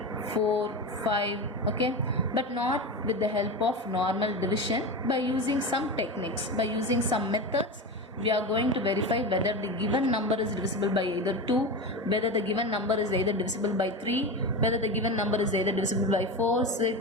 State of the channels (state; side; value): normal; both; correlation 0.23